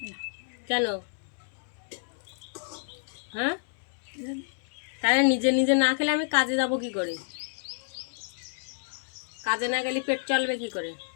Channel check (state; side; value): silent; right; 58 dB below the other